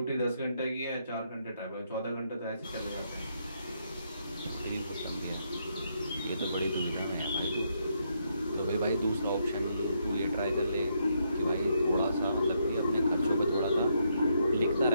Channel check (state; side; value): inverted; both; correlation -0.76